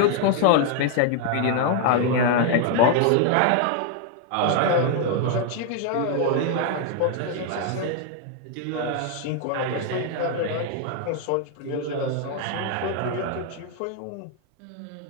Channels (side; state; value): both; different; correlation 0.00